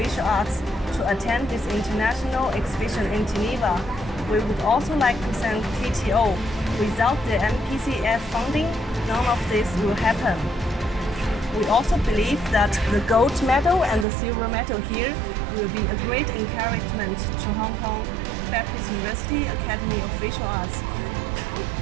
Arts, to attend this international exhibition in Geneva. We would also like to thank TTO. Without the MPCF funding, none of this will happen. We also believe that the gold medal and the silver medal here will be a great encouragement to Hong Kong Baptist University Academy of Visual Arts.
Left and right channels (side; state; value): left; drops out; at 14.1 s